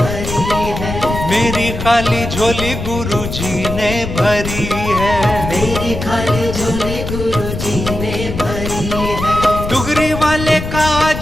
है। मेरी खाली झोली गुरुजी ने भरी है। मेरी खाली झोली गुरुजी ने भरी है। डुगरी वाले का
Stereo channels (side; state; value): left; noise; rumble, 6 dB below the sound